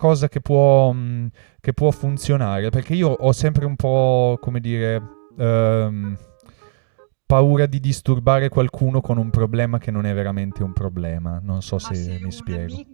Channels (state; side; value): silent; left; digital silence